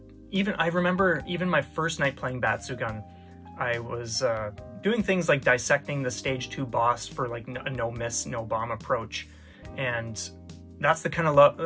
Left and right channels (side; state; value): both; identical; correlation 1.00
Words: I remember even my first night playing Batsu gun, I was doing things like dissecting the stage 2 boss for like a no miss, no bomb approach, and that's the kind